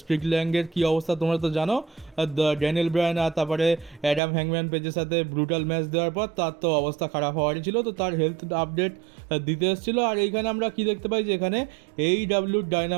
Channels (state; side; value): drops out; left; at 4.2 s